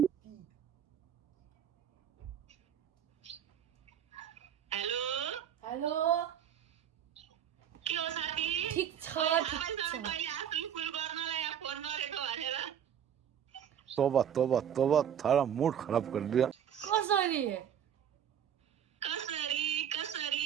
हेलो के हो साथी ठीक छ तोबा तोबा तोबा थारा मूड खराब कर दिया कसरी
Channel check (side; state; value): left; quieter; 9.1 dB